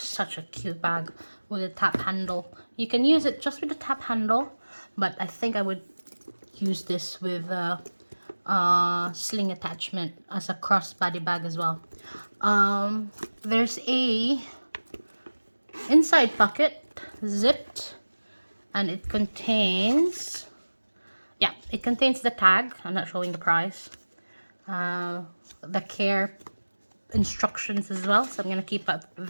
a cute bag with a tap handle. You can use it just with the tap handle, but I think I would use this with a sling attachment as a crossbody bag as well. There's a inside pocket, zipped, and it contains, yeah, it contains the tag. I'm not showing the price. The care instructions as well, so I'm gonna keep up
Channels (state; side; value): inverted; both; correlation -1.00